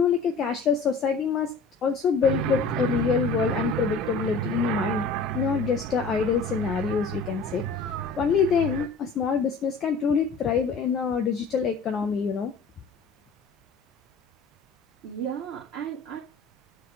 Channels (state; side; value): quieter; right; 3.9 dB